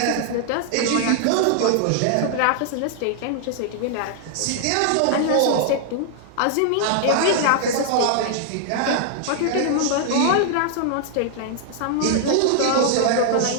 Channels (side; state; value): both; different; correlation 0.00